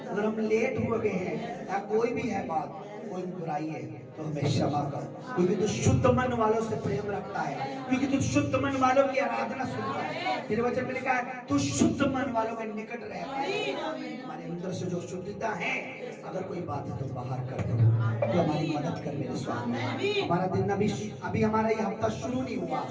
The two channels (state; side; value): identical; both; correlation 1.00